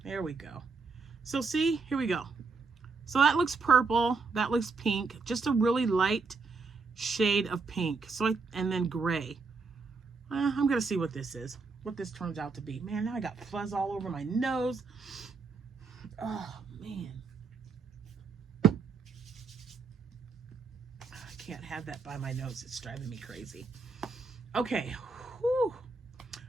we go. So see, here we go. So that looks purple, that looks pink, just a really light shade of pink. So and then gray. I'm gonna see what this is, what this turns out to be. Man, now I got fuzz all over my nose. Oh man, I can't have that by my nose. It's driving me crazy. Okay. Whew.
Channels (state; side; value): quieter; left; 4.4 dB